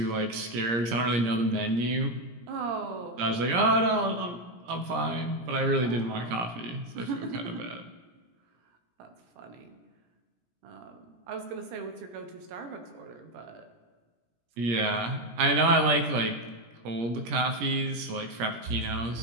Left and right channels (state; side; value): late; left; 17 ms